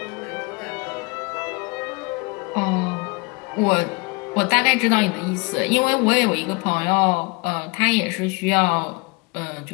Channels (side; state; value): right; quieter; 28.8 dB